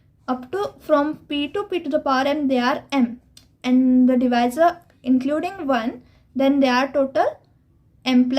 up to from p to the power m they are m, and the divisor including 1, then they are total m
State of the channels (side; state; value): both; identical; correlation 1.00